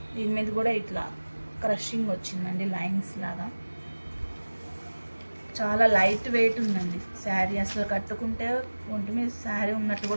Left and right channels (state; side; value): inverted; both; correlation -1.00